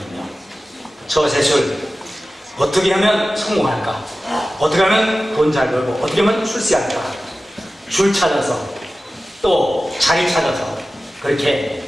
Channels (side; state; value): both; normal; correlation 0.95